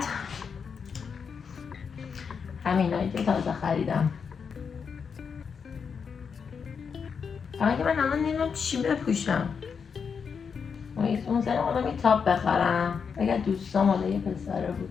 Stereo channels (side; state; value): right; quieter; 6.2 dB